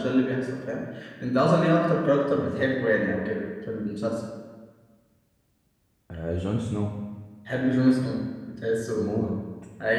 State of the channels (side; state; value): both; identical; correlation 1.00